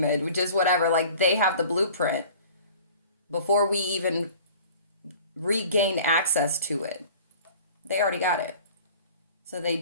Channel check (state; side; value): inverted; both; correlation -0.45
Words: and just whatever, like they have the blueprint before we even regain access to it. They already got it. So